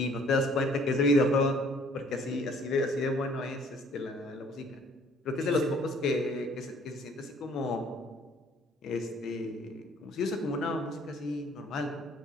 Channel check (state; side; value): normal; both; correlation 0.58